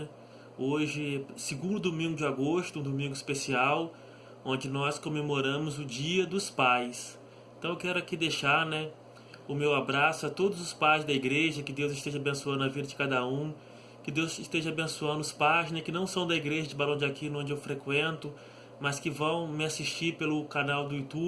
Hoje, segundo domingo de agosto, um domingo especial, onde nós comemoramos o Dia dos Pais. Então eu quero aqui deixar, né, o meu abraço a todos os pais da igreja, que Deus esteja abençoando a vida de cada um, que Deus esteja abençoando os pais, né, que não são da igreja de Barão de Aquino, onde eu frequento, mas que vão me assistir pelo canal do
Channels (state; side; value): identical; both; correlation 1.00